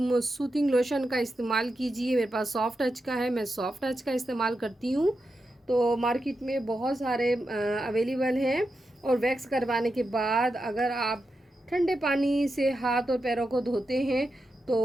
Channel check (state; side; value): normal; both; correlation 0.88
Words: सूथिंग लोशन का इस्तेमाल कीजिए। मेरे पास सॉफ्ट टच का है, मैं सॉफ्ट टच का इस्तेमाल करती हूँ। तो मार्केट में बहुत सारे अवेलेबल हैं। और वैक्स करवाने के बाद अगर आप ठंडे पानी से हाथ और पैरों को धोते हैं